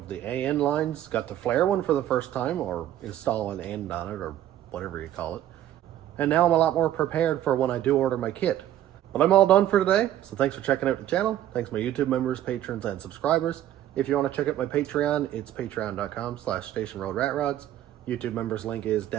the AN lines, got to flare one for the first time, or install an end on it, or whatever you call it. And now I'm a lot more prepared for when I do order my kit. But I'm all done for today, so thanks for checking out the channel. Thanks my YouTube members, patrons, and subscribers. If you want to check out my Patreon, it's patreon.com/stationroadratrods. YouTube members link is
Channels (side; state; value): left; quieter; 12.2 dB